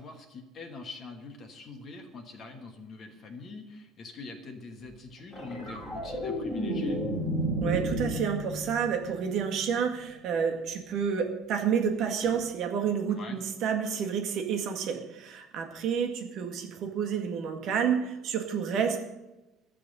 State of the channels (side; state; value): left; quieter; 5.2 dB